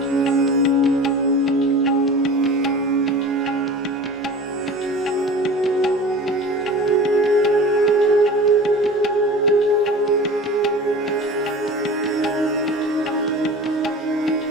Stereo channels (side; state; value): both; normal; correlation 0.37